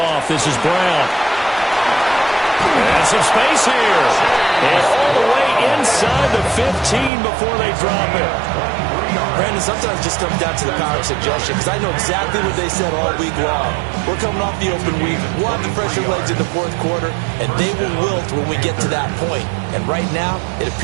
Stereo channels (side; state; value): left; drops out; at 7.1 s